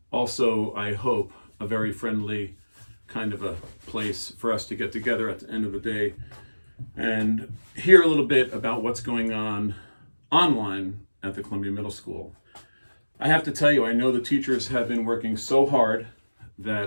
also I hope a very friendly kind of a place for us to get together at the end of the day and hear a little bit about what's going on online at the Columbia Middle School. I have to tell you, I know the teachers have been working so hard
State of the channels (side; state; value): both; inverted; correlation -1.00